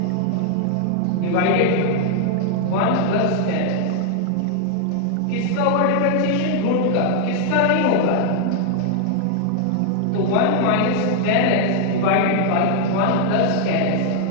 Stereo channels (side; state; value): both; different; correlation 0.00